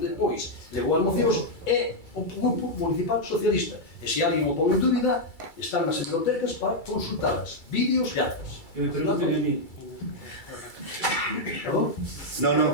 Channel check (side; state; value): right; late; 2.3 ms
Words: depois levou as mocións é o Grupo Municipal Socialista. E se alguén o pon en dúbida, están nas bibliotecas para consultalas, vídeos e actas. Que me pregunten a mí. Perdón? No.